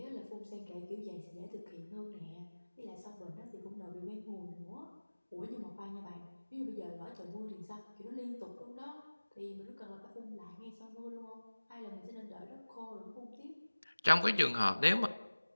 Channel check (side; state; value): both; inverted; correlation -1.00